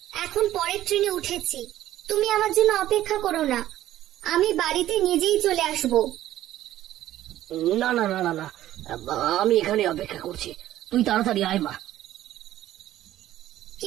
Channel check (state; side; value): quieter; left; 13.5 dB